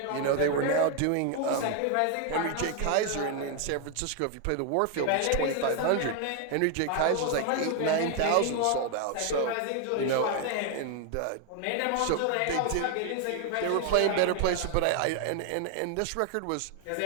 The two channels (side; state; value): both; different; correlation 0.01